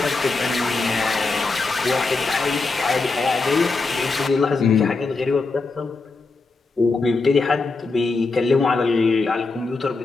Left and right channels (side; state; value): right; quieter; 3.9 dB